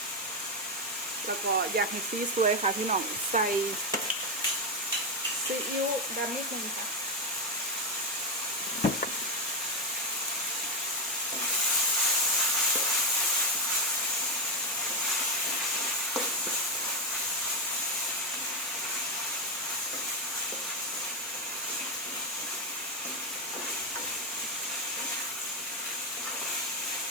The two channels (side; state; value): both; normal; correlation 0.07